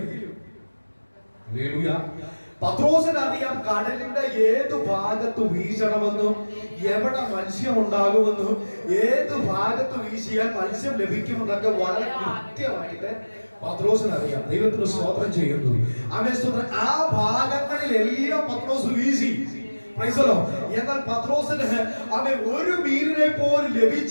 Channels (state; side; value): inverted; both; correlation -1.00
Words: ഹല്ലേലൂയ, പത്രോസിന് അറിയാം കടലിന്റെ ഏത് ഭാഗത്ത് വീശണമെന്നും എവിടെ മത്സ്യം ഉണ്ടാകുമെന്നും ഏത് ഭാഗത്ത് വീശിയാൽ മത്സ്യം ലഭിക്കുമെന്നൊക്കെ വളരെ കൃത്യമായിട്ട് പത്രോസിന് അറിയാം. ദൈവത്തിന് സ്തോത്രം ചെയ്യുന്നു. അവൻ സ്തോത്രം. ആ ഭാഗങ്ങളിലെല്ലാം പത്രോസ് വീശി. Price the Lord. എന്നാൽ പത്രോസിന് അവൻ ഒരു മീനിനെ പോലും